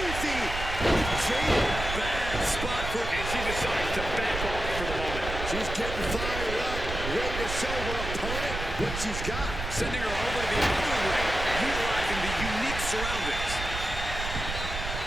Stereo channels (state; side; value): noise; right; rumble, 6 dB below the sound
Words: Jada, Bad spot for... And she decides to back off for the moment. she's getting fired up, ready to show her opponent what she's got. Sending her over to the other ring, utilizing the unique surroundings.